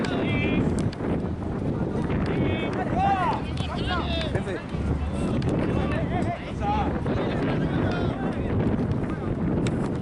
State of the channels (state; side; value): identical; both; correlation 1.00